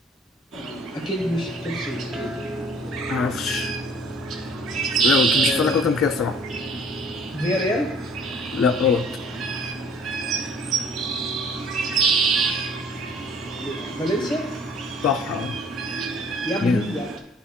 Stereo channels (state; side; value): normal; both; correlation 0.54